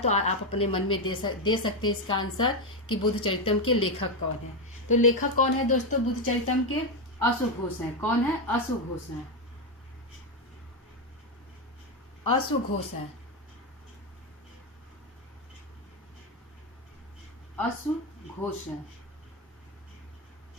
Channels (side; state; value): both; normal; correlation 0.08